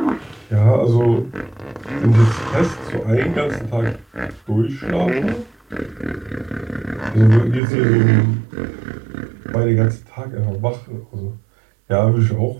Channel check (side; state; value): left; drops out; at 7.6 s